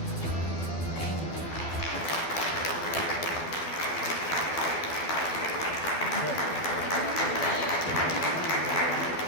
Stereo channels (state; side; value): late; right; 12 ms